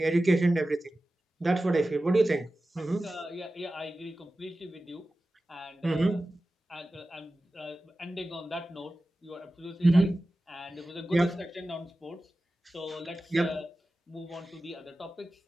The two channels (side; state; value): both; normal; correlation 0.95